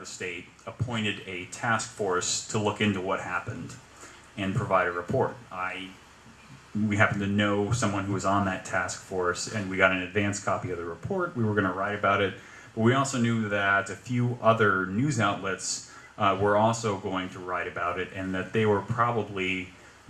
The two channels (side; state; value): both; identical; correlation 1.00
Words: state appointed a task force to look into what happened and provide a report. We happened to know someone who was on that task force, and we got an advance copy of the report. We were going to write about it, but we also knew that a few other news outlets were also going to write about it, and that they were probably